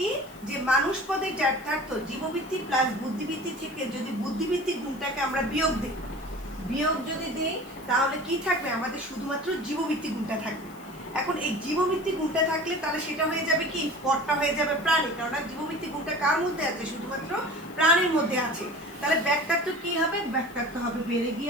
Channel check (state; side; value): noise; left; hiss, 24 dB below the sound